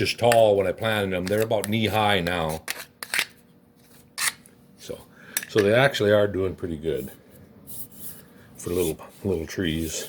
tall when I planted them. They're about knee high now. So they actually are doing pretty good for little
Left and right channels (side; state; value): both; identical; correlation 1.00